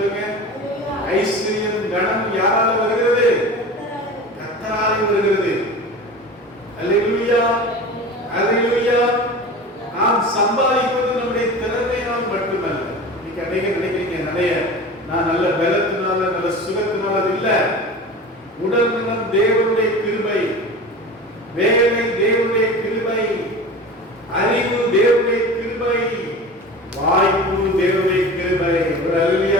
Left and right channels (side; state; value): both; normal; correlation 0.34